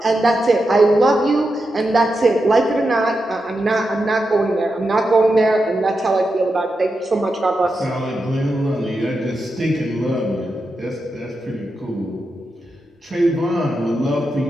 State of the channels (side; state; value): both; normal; correlation 0.88